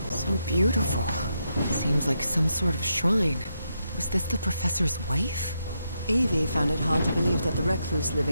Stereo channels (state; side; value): inverted; both; correlation -0.82